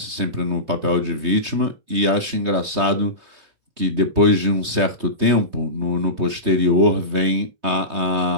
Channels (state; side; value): late; left; 3.2 ms